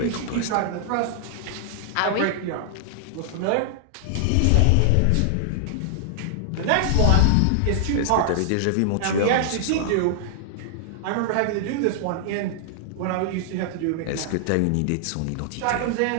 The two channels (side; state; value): both; different; correlation -0.01